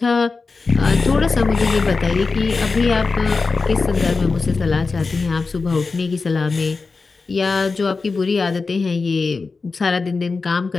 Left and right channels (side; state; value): right; quieter; 4.2 dB